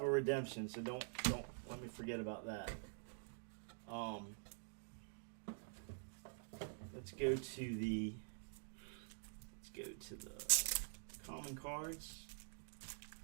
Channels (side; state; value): left; silent; digital silence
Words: a redemption, so don't let me forget about that. Let's go to the common cards.